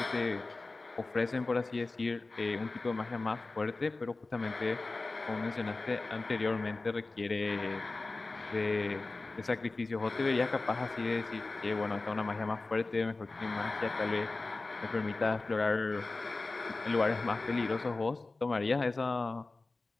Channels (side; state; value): right; quieter; 3.4 dB